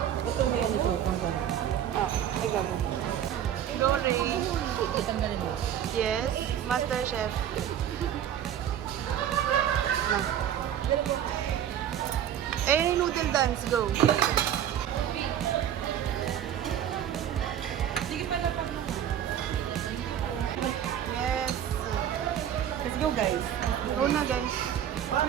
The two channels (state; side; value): quieter; left; 10.1 dB